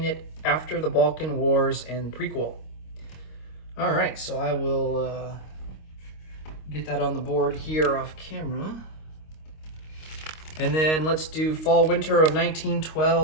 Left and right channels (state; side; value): late; right; 26 ms